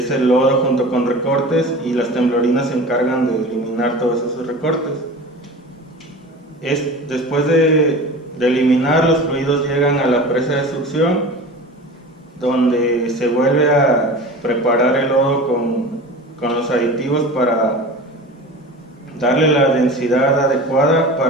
el lodo junto con recortes, y las temblorinas se encargan de eliminar todos esos recortes. Después de eliminar, los fluidos llegan a la presa de succión, donde se vuelve a preparar el lodo con los aditivos darle la densidad adecuada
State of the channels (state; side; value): normal; both; correlation 0.35